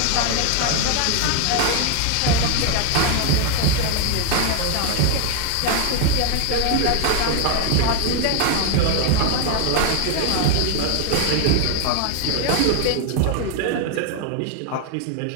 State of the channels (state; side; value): different; both; correlation 0.00